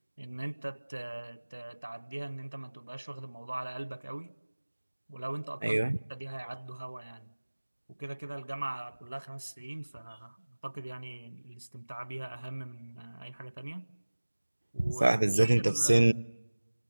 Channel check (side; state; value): both; inverted; correlation -1.00